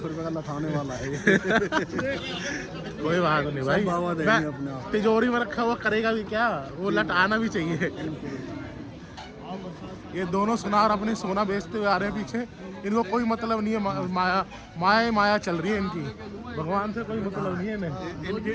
रुपए का लथाने वाला है ये। कोई बात नहीं भाई, बाबा देंगे अपने मैं आप। तिजोरी में रखा हुआ करेगा भी क्या, वो लट आना भी चाहिए। ये दोनों सुनार अपने सोना बेचते हुए आ रहे हैं पीछे, इनको कोई मतलब नहीं है, माया माया चल रही है इनकी, भगवान से कोई मतलब नहीं है इन्हें।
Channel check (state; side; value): identical; both; correlation 1.00